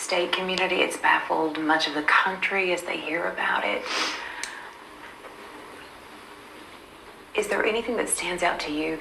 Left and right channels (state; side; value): identical; both; correlation 1.00